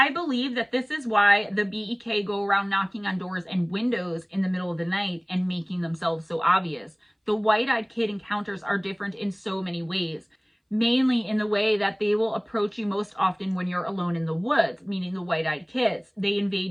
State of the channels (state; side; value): identical; both; correlation 1.00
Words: believe that this is why the BEK go around knocking on doors and windows in the middle of the night and making themselves so obvious. The white-eyed kid encounters are different in so many ways, mainly in the way that they will approach you most often when you're alone in the woods, meaning the white-eyed kids. They